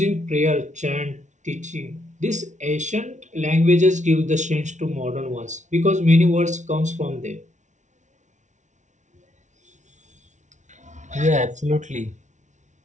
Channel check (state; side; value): late; left; 0.35 ms